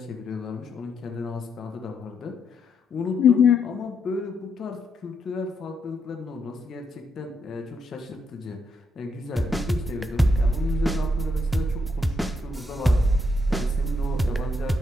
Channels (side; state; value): both; normal; correlation 0.78